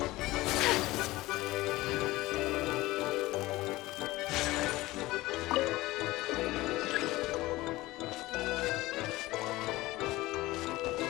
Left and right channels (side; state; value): right; quieter; 18.9 dB